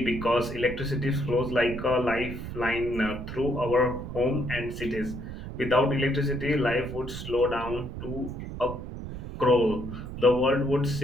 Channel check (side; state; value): right; noise; rumble, 8 dB below the sound